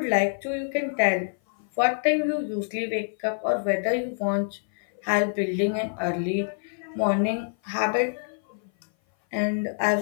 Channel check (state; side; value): silent; right; 57 dB below the other